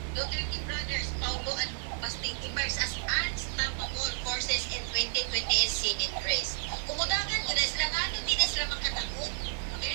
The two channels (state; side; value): silent; left; digital silence